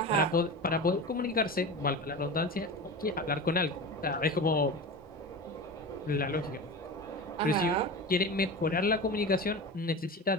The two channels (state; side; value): normal; both; correlation 0.29